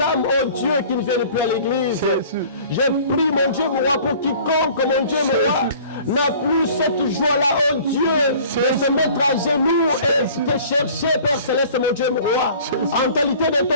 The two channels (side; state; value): both; inverted; correlation -0.48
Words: oh Dieu, qui ne viennent plus à l'église. Jésus. J'ai prié, mon Dieu, mon roi, pour quiconque, mon Dieu, mon roi, n'a plus cette joie-là, oh Dieu, de se mettre à genoux et de chercher, Père Céleste, mon Dieu, mon roi. En qualité de